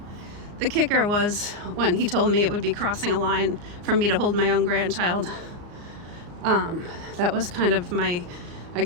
the kicker was when he told me it would be crossing a line for me to hold my own grandchild. That was kind of my I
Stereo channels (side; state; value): left; late; 34 ms